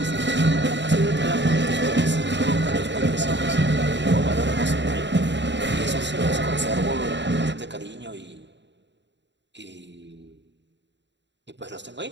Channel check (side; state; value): left; late; 0.52 ms